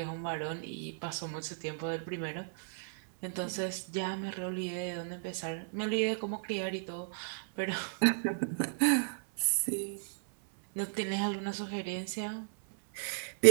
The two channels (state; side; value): silent; left; 55 dB below the other